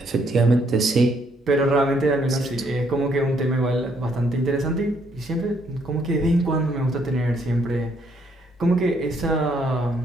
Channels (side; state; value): both; normal; correlation 0.70